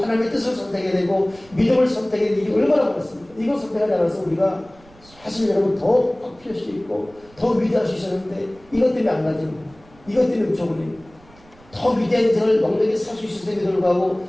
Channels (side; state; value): right; noise; rumble, 26 dB below the sound